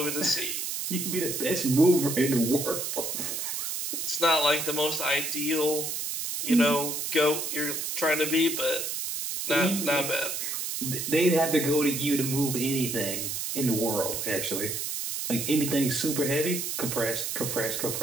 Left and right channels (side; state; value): right; noise; hiss, 3 dB below the sound